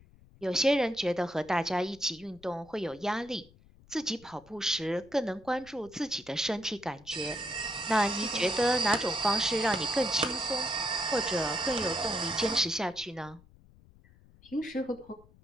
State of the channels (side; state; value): left; noise; rumble, 25 dB below the sound